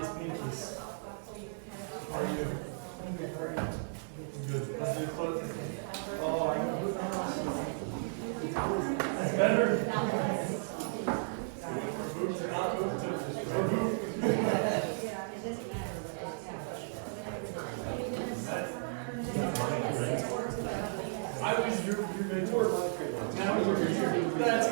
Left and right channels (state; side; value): silent; left; digital silence